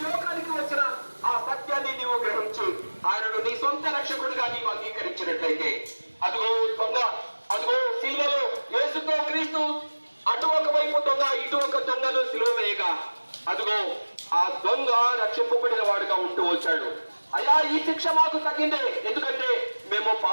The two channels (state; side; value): inverted; both; correlation -1.00